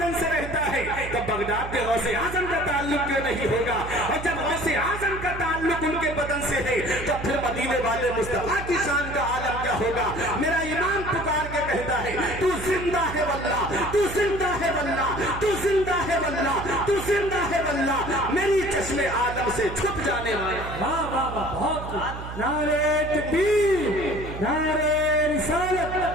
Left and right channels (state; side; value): noise; right; hum, 10 dB below the sound